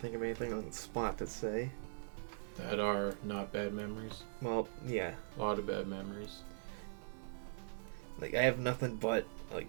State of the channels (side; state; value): left; silent; digital silence